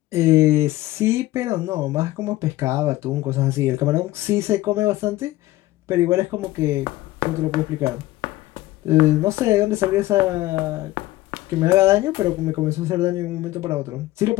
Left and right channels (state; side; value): quieter; right; 17.0 dB